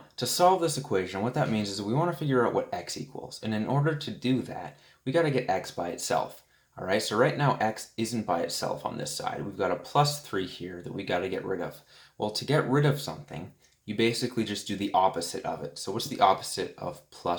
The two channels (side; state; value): both; identical; correlation 1.00